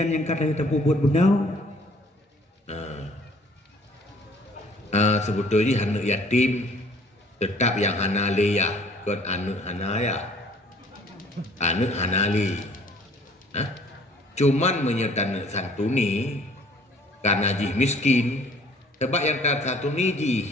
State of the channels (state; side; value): normal; both; correlation 0.56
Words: yang kata kita buat benar. Sebetulnya anak yatim tetap yang hanali ya, kan anak hanaya, anak hanali. Cuman menyertai santuni karena jih miskin. Sebab yang tak santuni